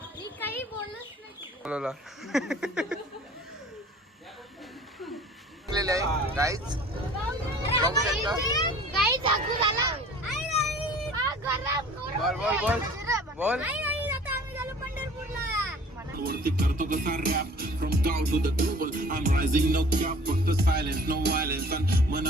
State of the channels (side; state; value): both; normal; correlation 0.48